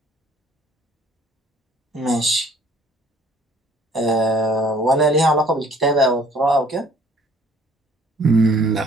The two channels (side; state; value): both; normal; correlation 0.57